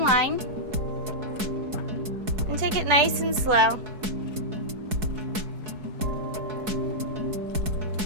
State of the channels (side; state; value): left; late; 4.7 ms